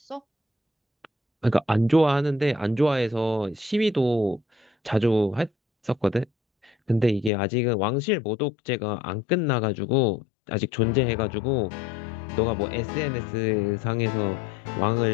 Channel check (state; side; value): drops out; right; at 7.3 s